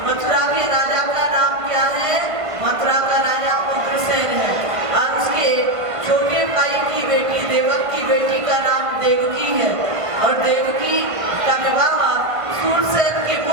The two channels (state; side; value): late; left; 1.5 ms